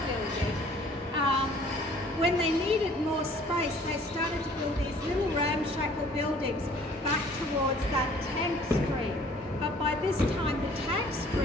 building. When they needed more space, they started to build these little ramshackle buildings back towards that tank stream. But by this time, the tank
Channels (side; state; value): both; normal; correlation 0.54